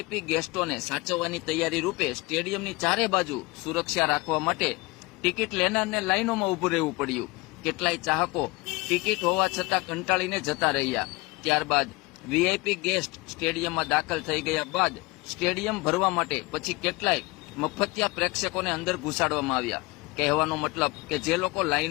ગેસ્ટોને સાચવવાની તૈયારી રૂપે સ્ટેડિયમની ચારે બાજુ સુરક્ષા રાખવા માટે ટિકિટ લેનારને લાઇનોમાં ઉભું રહેવું પડ્યું। કેટલાય ચાહકો ટિકિટ હોવા છતાં કંટાળીને જતા રહ્યા। ત્યારબાદ વીઆઈપી ગેસ્ટ સ્ટેડિયમમાં દાખલ થઈ ગયા બાદ સ્ટેડિયમ ભરવા માટે પછી કેટલાય મફતિયા પ્રેક્ષકોને અંદર ઘુસાડવામાં આવ્યા। કહેવાનો મતલબ કે જે લોકો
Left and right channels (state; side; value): quieter; right; 23.4 dB